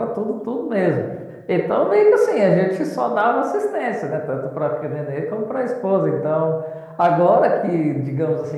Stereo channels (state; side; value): identical; both; correlation 1.00